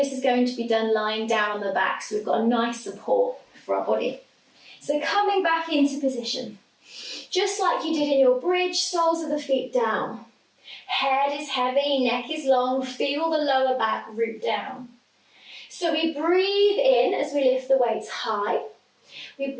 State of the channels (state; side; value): identical; both; correlation 1.00